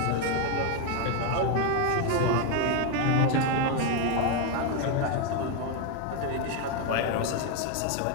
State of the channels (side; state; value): both; different; correlation 0.02